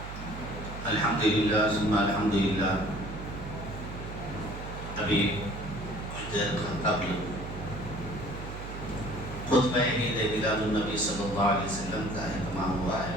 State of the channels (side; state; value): right; noise; hum, 9 dB below the sound